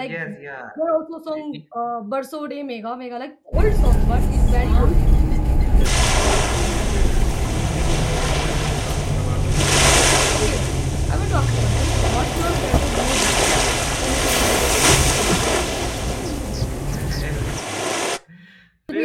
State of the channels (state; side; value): identical; both; correlation 1.00